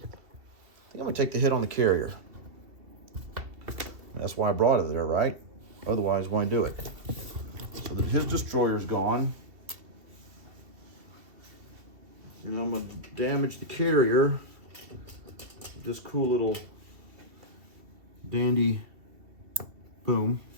think I'm going to take the hit on the carrier. That's why I brought it there, right? Otherwise, why do it? So then his destroyer's gone. And I'm going to damage the carrier. This cool little dandy boom.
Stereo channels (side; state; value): left; late; 2.6 ms